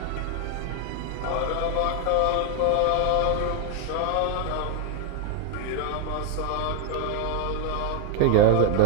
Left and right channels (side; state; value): both; different; correlation 0.01